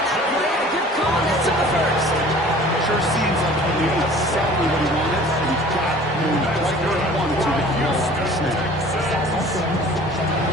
that play, and a good call, and that's on the first. Sure seems like he knew exactly what he wanted, and he got moving right where he wanted to get the ball off the snap.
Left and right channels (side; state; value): both; normal; correlation 0.47